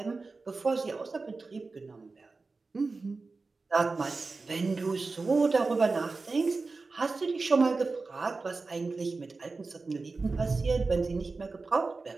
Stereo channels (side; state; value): left; quieter; 3.9 dB